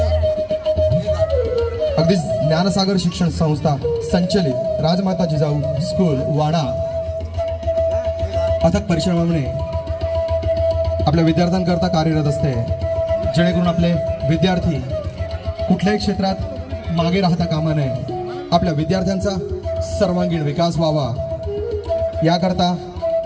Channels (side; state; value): both; identical; correlation 1.00